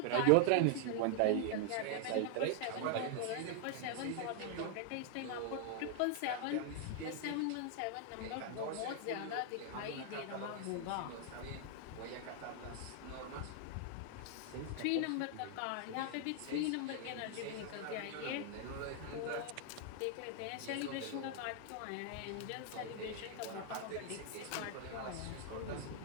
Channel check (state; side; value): different; both; correlation 0.00